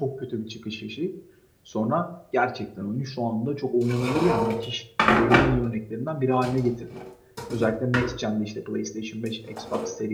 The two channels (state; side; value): identical; both; correlation 1.00